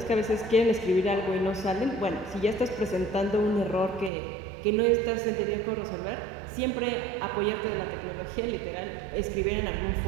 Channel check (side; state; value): left; drops out; at 4.1 s